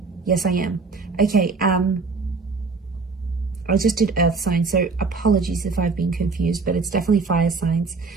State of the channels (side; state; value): left; quieter; 4.3 dB